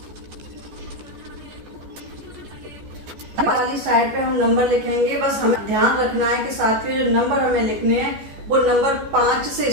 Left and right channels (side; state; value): left; late; 14 ms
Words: वाली साइड पे हम नंबर लिखेंगे। बस हमें ध्यान रखना है कि साथियों जो नंबर हमें लिखने हैं वो नंबर 5 से